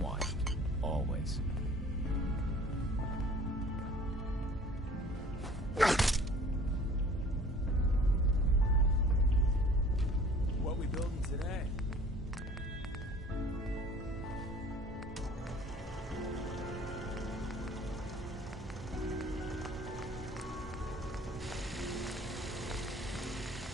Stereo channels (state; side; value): normal; both; correlation 0.49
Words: Always. What we building today?